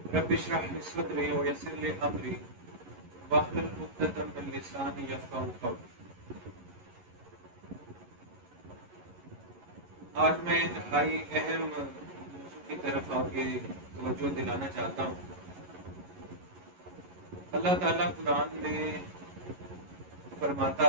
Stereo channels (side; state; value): left; late; 11 ms